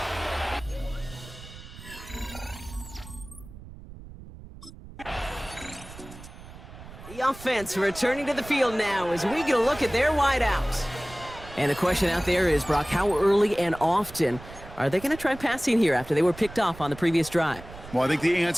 The offense returning to the field now as we get a look at their wideouts. And the question out there is, Brock, how early and often are they going to try passing here after they were picked off on the previous drive? Well, I think the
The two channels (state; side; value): noise; right; rumble, 16 dB below the sound